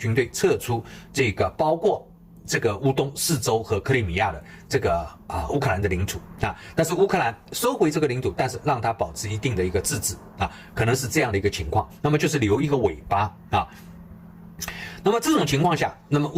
队撤出这个包括这个乌东4州和克里米亚的这个乌克兰的领土啊，但是乌克兰收回这个领土，但是让它保持一定的一个自治啊，可能是这样的一个情况。那么就是留一个尾巴啊。那么这种情况下，那么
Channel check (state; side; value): identical; both; correlation 1.00